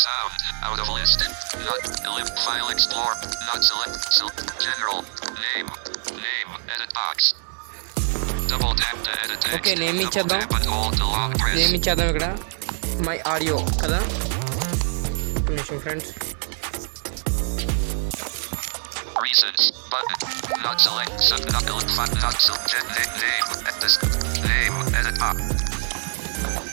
sound. Out of list. Not elip file explore. Not select. General. Name. Edit box. Double tap to edit text. Okay, name ఇచ్చేద్దాం. Double tap and hold to long press. Name ఇచ్చేద్దాం ఇక్కడ. My audio కదా. ఒక నిమిషం friends. Reasons. Button. Not select. Not elip file. Not select. Name. This. Name. Edit box.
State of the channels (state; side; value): silent; left; 63 dB below the other